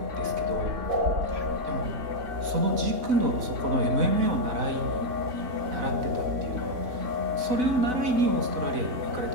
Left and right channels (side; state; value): left; late; 4.0 ms